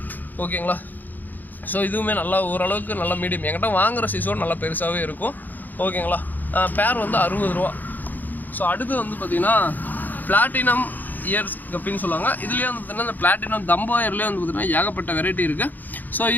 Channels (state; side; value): late; right; 0.085 ms